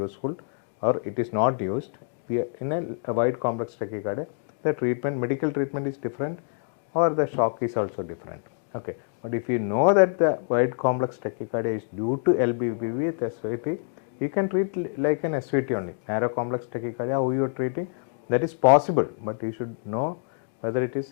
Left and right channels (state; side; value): silent; right; digital silence